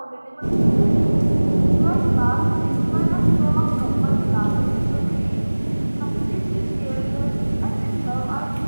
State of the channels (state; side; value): inverted; both; correlation -1.00